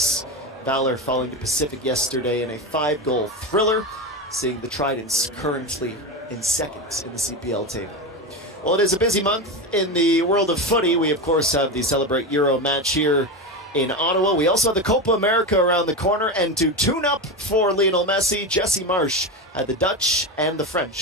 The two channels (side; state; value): both; normal; correlation 0.18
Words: Valor falling to Pacific yesterday in a 5-goal thriller, seeing the Tridents currently in 2nd in the CPL table. Well, it is a busy month in the world of footy. We, of course, have the Celebrate Euro match here in Ottawa. We also have the Copa America around the corner, and to tune up for Lionel Messi, Jesse Marsh had the Dutch and the